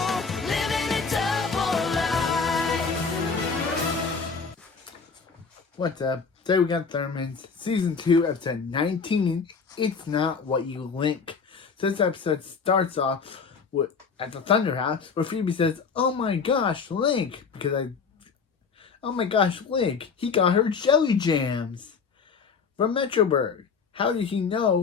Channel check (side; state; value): right; quieter; 5.3 dB